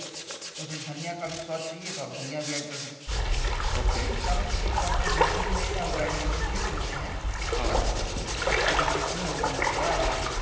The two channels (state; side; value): identical; both; correlation 1.00